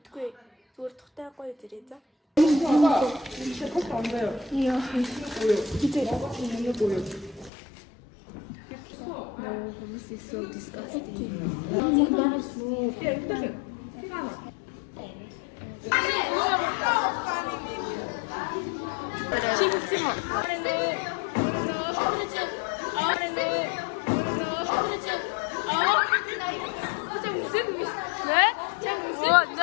Үгүй зүгээр тухтай гоё зэрэг за. Яа. No, this is so disgusting. 네?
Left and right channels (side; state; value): right; drops out; at 7.5 s